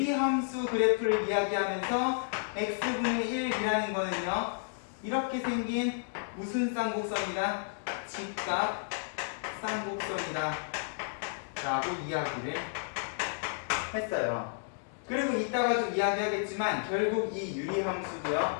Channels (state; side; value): silent; right; digital silence